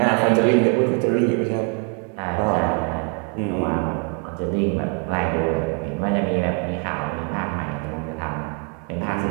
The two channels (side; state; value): left; quieter; 39.1 dB